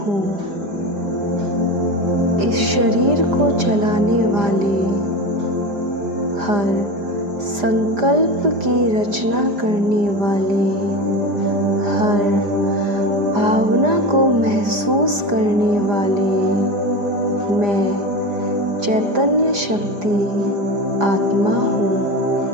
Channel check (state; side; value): late; left; 4.9 ms